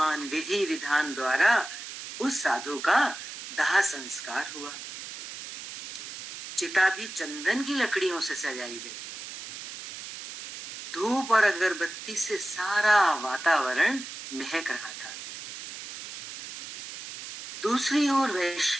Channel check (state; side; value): noise; right; hiss, 11 dB below the sound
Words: विधि विधान द्वारा उस साधु का दाह संस्कार हुआ। चिता भी चंदन की लकड़ियों से सजाई गई। धूप और अगरबत्ती से सारा वातावरण महक रहा था। दूसरी ओर